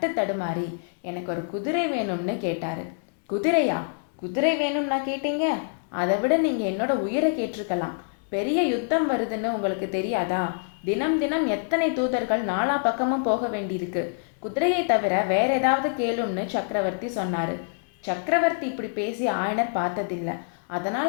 தடுமாறி, எனக்கு ஒரு குதிரை வேணும்னு கேட்டார். குதிரையா? குதிரை வேணும்னா கேட்டீங்க? அதை விட நீங்கள் என்னோட உயிரை கேட்டிருக்கலாம். பெரிய யுத்தம் வருதுன்னு உங்களுக்கு தெரியாதா? தினம் தினம் எத்தனை தூதர்கள் நாலா பக்கமும் போக வேண்டியிருக்கு. குதிரையை தவிர வேற ஏதாவது கேளும்னு சக்கரவர்த்தி சொன்னார். சக்கரவர்த்தி இப்படி பேசி ஆயனர் பார்த்ததில்லை.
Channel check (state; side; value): silent; right; digital silence